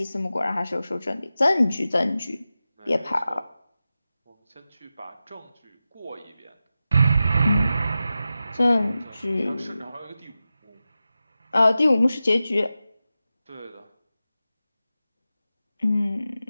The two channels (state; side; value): inverted; both; correlation -0.93